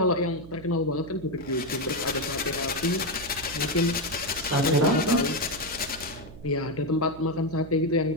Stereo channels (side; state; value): right; noise; hum, 16 dB below the sound